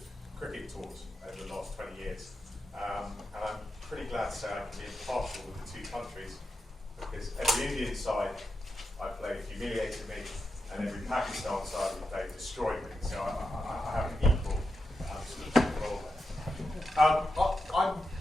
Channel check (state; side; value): normal; both; correlation 0.87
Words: cricket tours over the last 20 years. And I'm pretty glad to say I can be impartial with the two countries, because every Indian side I played humiliated me, and every Pakistan side we played destroyed me. So I have an equal sort of role there. I'm,